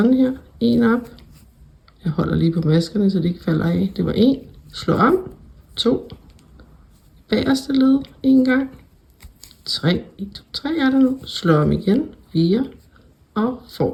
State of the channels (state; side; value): identical; both; correlation 1.00